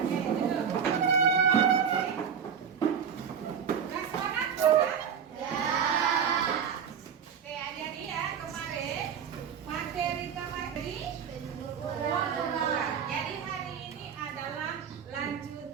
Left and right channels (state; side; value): quieter; left; 7.5 dB